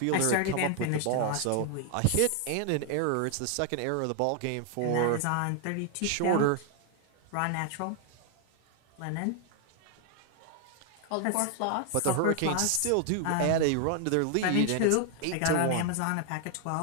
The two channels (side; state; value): both; different; correlation 0.00